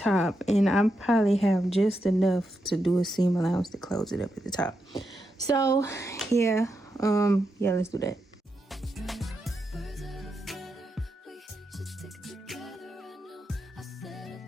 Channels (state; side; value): normal; both; correlation 0.85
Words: And I probably have just enough to do a seam allowance to close it up at the top. So yeah, let's do that.